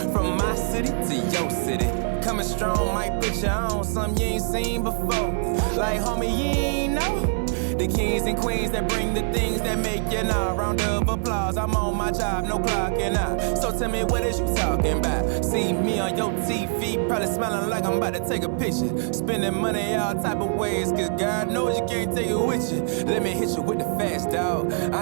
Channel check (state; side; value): silent; left; 62 dB below the other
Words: From my city to your city, coming strong might put you on something you ain't seen before. Like homie, you ain't know the kings and queens that bring the things that make you know. Round of applause, I'm on my job, no clocking out. So tell me, what is you talking about? See me on your TV, probably smiling like I'm about to take a picture. Spending money all type of ways, cause God knows you can't take it with you. Let me hit you with the fast, dog.